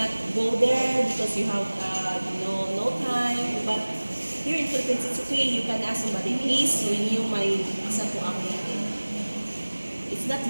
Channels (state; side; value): inverted; both; correlation -1.00